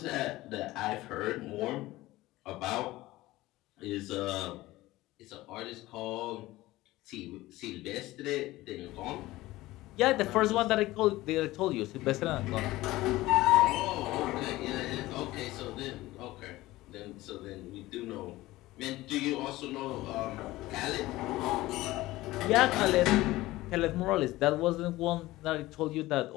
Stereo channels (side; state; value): right; quieter; 17.9 dB